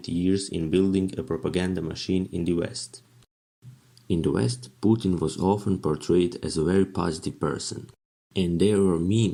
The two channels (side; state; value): both; identical; correlation 1.00